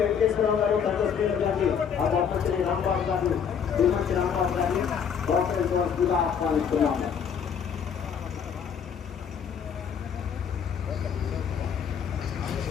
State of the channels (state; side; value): quieter; right; 7.3 dB